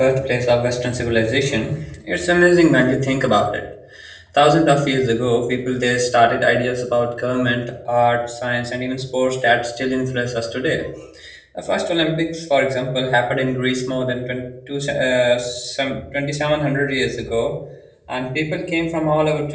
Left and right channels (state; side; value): identical; both; correlation 1.00